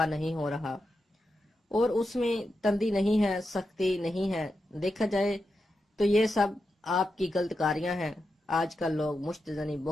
نہیں ہو رہا، اور اس میں تندی نہیں ہے، سختی نہیں ہے۔ دیکھا جائے تو یہ سب آپ کی غلط کاریاں ہیں۔ آج کل لوگ مشت زنی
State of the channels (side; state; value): both; normal; correlation 0.88